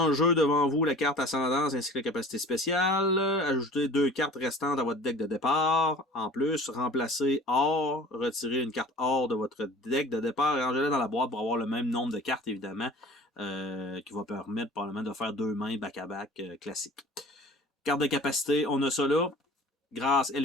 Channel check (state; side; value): normal; both; correlation 0.44